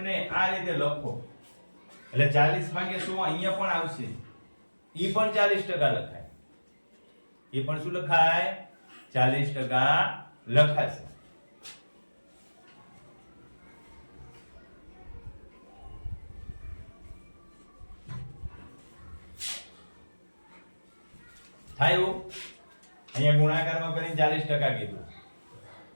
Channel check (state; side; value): inverted; both; correlation -1.00